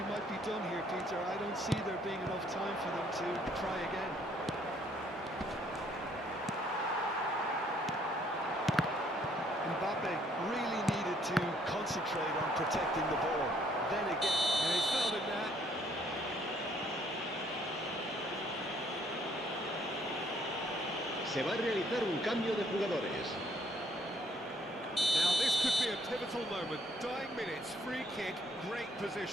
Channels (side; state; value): both; normal; correlation 0.65